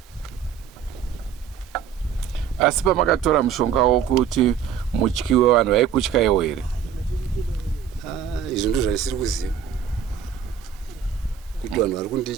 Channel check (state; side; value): quieter; left; 8.1 dB